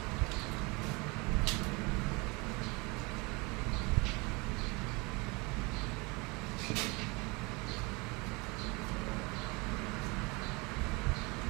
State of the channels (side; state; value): left; quieter; 27.1 dB